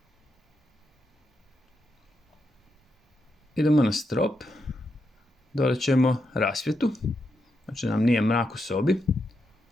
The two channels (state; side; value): normal; both; correlation 0.83